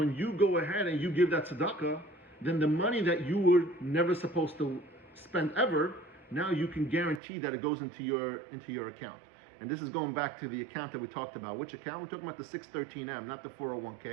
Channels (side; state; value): left; drops out; at 7.2 s